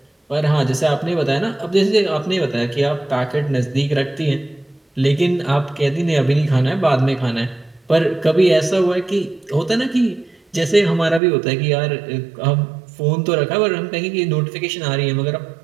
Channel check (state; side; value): drops out; left; at 11.2 s